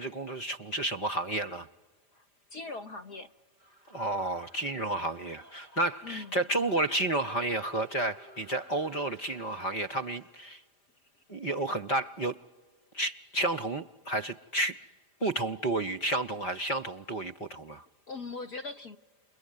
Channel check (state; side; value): late; right; 5.0 ms